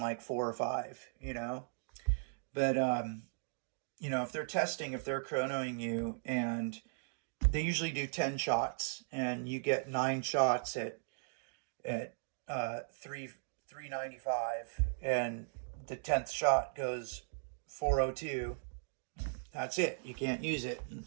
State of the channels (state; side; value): silent; left; digital silence